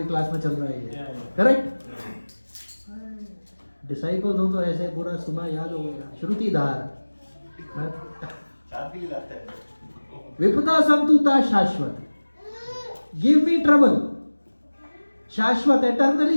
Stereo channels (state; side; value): inverted; both; correlation -1.00